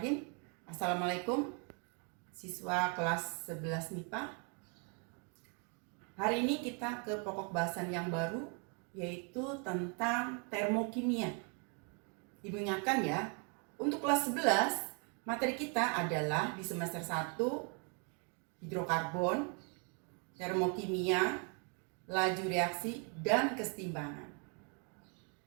Assalamualaikum siswa kelas 11 MIPA. Hari ini kita ke pokok bahasan yang baru, yaitu tentang termokimia. Ibu ingatkan ya, untuk kelas 11 materi kita adalah di semester 1 hidrokarbon, termokimia, laju reaksi, dan kesetimbangan.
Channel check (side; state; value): left; quieter; 37.4 dB